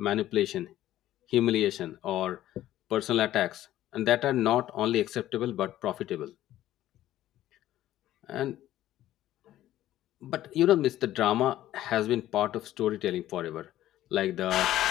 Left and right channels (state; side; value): quieter; right; 13.7 dB